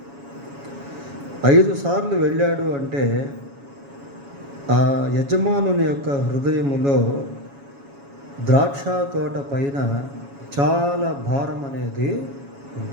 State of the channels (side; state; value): left; late; 7.2 ms